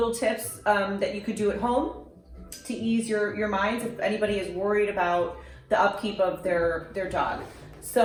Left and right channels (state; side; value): identical; both; correlation 1.00